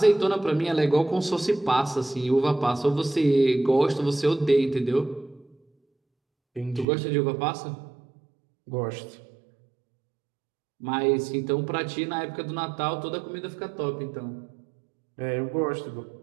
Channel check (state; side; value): drops out; left; at 6.9 s